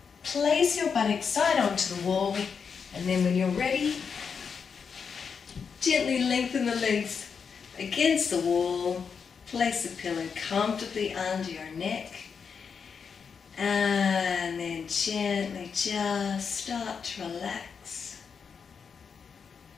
place your buttocks side onto the wall, and then when you're ready, gently lengthen the legs against the wall, place the pillow comfortably under your neck, and then gently just start to relax.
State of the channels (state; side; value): quieter; right; 6.2 dB